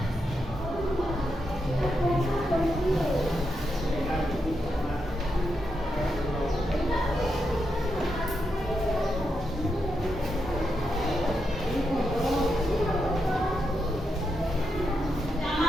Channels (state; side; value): normal; both; correlation 0.84